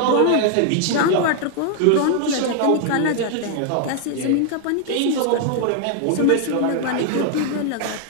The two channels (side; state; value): both; different; correlation 0.00